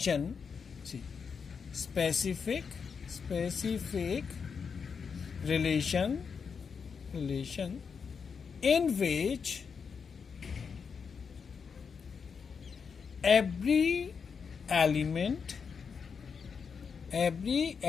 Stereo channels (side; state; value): right; quieter; 6.0 dB